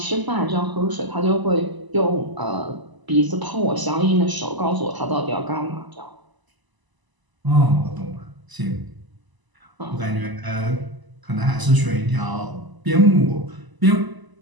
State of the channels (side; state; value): left; late; 1.0 ms